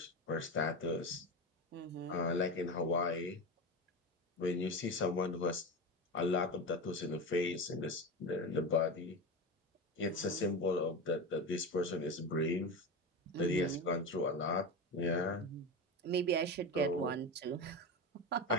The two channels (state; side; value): normal; both; correlation 0.21